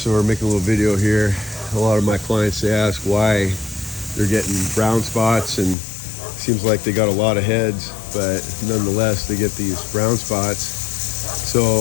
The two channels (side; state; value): right; drops out; at 5.8 s